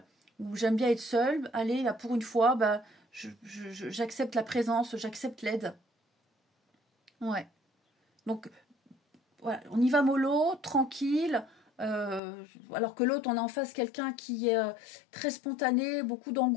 ou j'aime bien être seule. Allez, là, pour une fois, j'accepte la présence, j'accepte l'aide. Ouais. Donc, voilà, on y va mollo, tranquille. Alors que l'autre, on a en face quelqu'un qui est très spontané, beaucoup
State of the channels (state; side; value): drops out; right; at 12.2 s